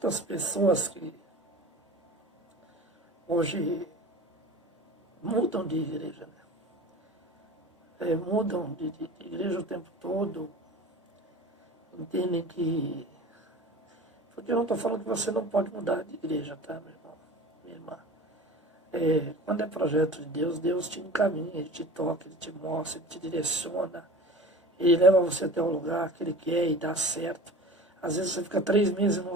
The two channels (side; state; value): both; normal; correlation 0.38